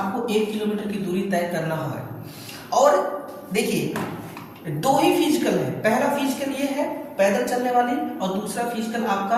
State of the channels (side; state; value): both; identical; correlation 1.00